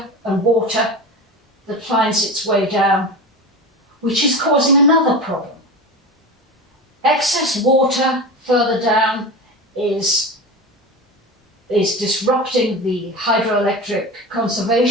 and water that finds its way down, which is causing another problem. Excess water further down is disrupting the hydroelectric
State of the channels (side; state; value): both; normal; correlation 0.27